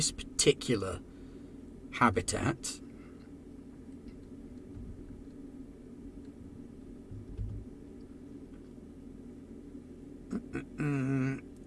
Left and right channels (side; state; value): both; identical; correlation 1.00